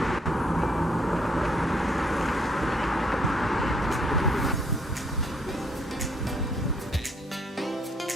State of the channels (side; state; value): both; normal; correlation 0.68